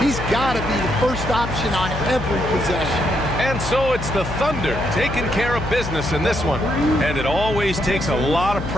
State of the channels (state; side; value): noise; left; hum, 7 dB below the sound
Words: got to be the first option on every possession. And so it's the Thunder taking care of business in this one. And it always takes a lot of